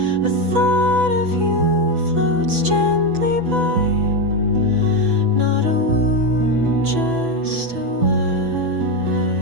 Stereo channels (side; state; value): left; late; 6.0 ms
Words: A thought of you floats gently by, not a wound, just a why.